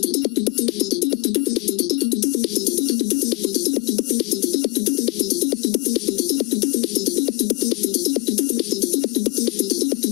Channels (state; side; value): quieter; right; 22.1 dB